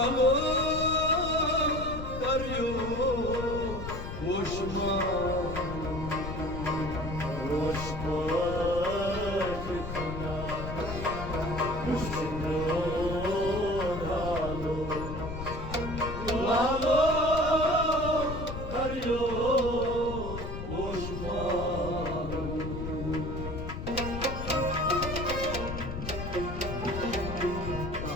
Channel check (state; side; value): noise; left; rumble, 7 dB below the sound